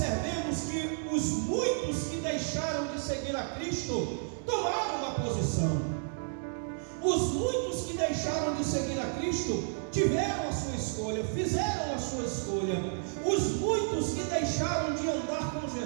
que os muitos que deixaram de seguir a Cristo tomaram uma posição. Os muitos que deixaram de seguir a Cristo tiveram a sua escolha, fizeram a sua escolha. Os muitos que deixaram de andar com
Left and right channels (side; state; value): left; silent; digital silence